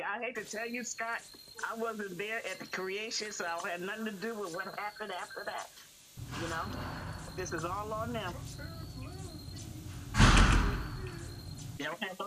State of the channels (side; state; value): both; identical; correlation 1.00